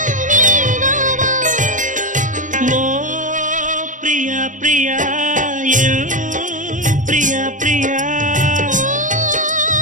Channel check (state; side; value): late; left; 0.37 ms